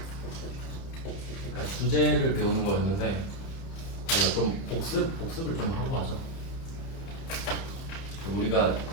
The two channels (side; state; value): right; late; 30 ms